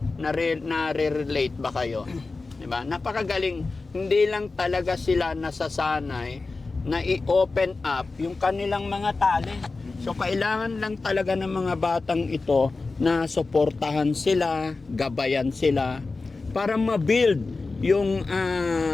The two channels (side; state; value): right; quieter; 3.8 dB